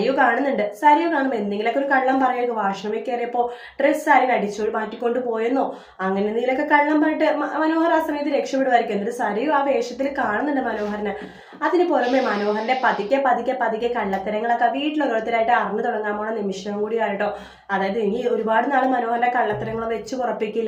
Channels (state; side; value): identical; both; correlation 1.00